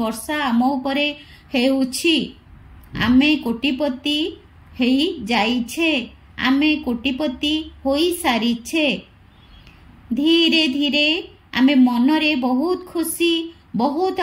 वर्षा आम उपरे हेउछि आमे कोटिपति हेई जाइछे आमे कोटिपति होई सारिछे धीरे धीरे आमे मनरे बहुत खुशी बहुत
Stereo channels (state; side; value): identical; both; correlation 1.00